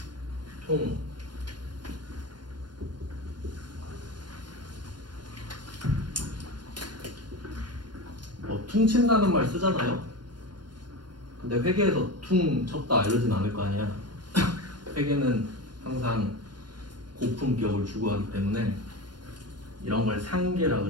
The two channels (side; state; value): left; late; 0.71 ms